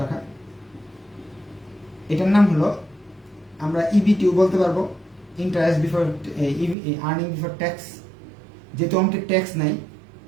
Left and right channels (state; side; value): drops out; left; at 6.8 s